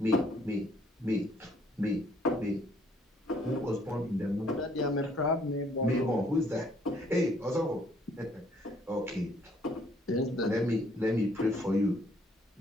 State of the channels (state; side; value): normal; both; correlation 0.64